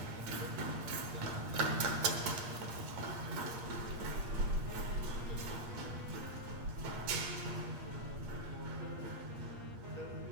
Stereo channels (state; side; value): late; left; 8.6 ms